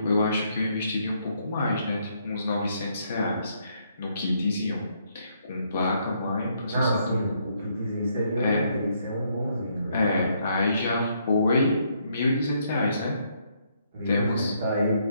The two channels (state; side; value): inverted; both; correlation -0.72